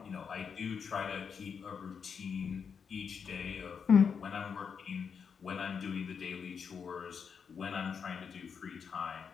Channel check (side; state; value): right; quieter; 6.5 dB